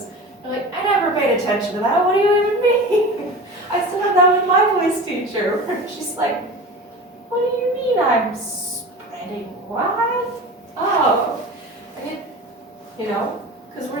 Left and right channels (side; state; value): both; normal; correlation 0.33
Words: you're like, I never paid attention to that. What do you even mean? I still have that with my voice teacher, where she's like, what do you mean I'm spreading what? Oh, and because